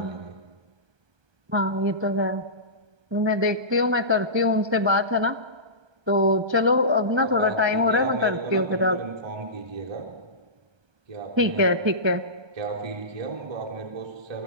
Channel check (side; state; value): left; late; 1.2 ms